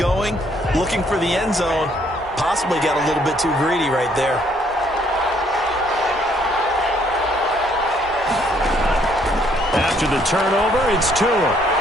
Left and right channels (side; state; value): both; normal; correlation 0.66